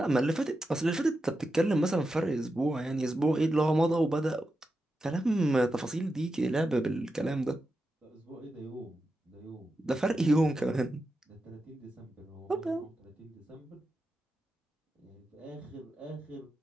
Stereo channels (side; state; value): both; normal; correlation 0.89